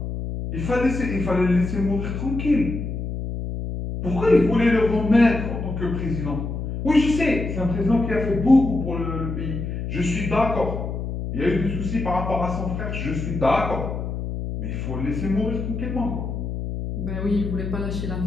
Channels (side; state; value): left; noise; hum, 5 dB below the sound